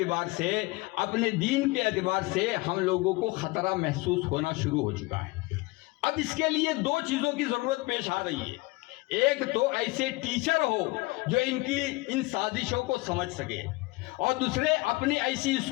سے، اپنے دین کے اعتبار سے ہم لوگوں کو خطرہ محسوس ہونا شروع ہو چکا ہے۔ اب اس کے لیے 2 چیزوں کی ضرورت پیش آ رہی ہے۔ ایک تو ایسے ٹیچر ہو جو ان سازشوں کو سمجھ سکے، اور دوسرے اپنی ایسی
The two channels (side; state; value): right; quieter; 23.1 dB